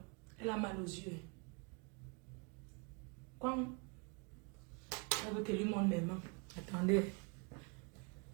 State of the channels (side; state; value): left; quieter; 32.9 dB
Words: elle a mal aux yeux. Quand elle veut que lui montre mes mains. Attendez.